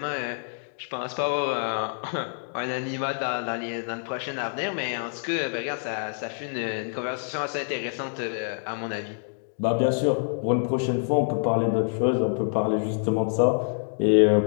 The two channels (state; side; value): silent; right; digital silence